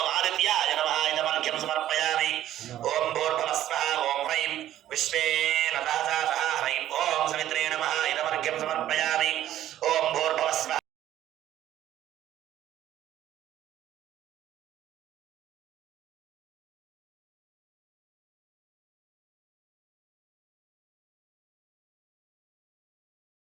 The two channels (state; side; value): quieter; left; 12.6 dB